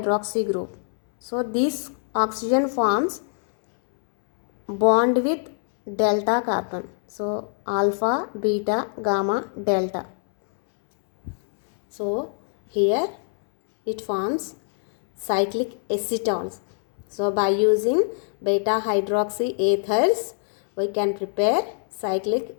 group. So this oxygen forms bond with delta carbon. So alpha, beta, gamma, delta. So here it forms cyclic acetals. So by using beta hydroxy ethers, we can prepare cyclic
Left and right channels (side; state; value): right; silent; 63 dB below the other